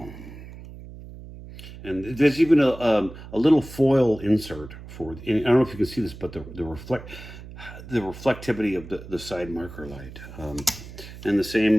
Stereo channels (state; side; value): noise; right; hum, 15 dB below the sound